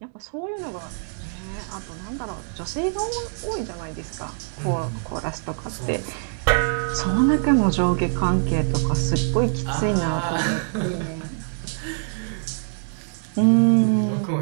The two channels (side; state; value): left; silent; digital silence